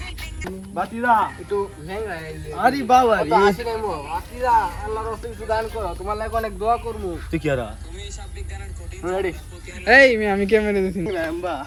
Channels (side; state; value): both; identical; correlation 1.00